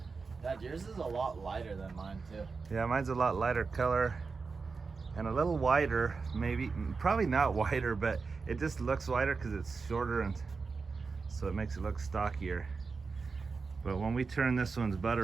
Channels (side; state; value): left; quieter; 4.6 dB